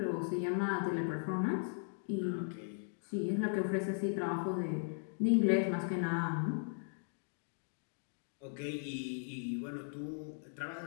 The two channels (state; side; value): silent; right; digital silence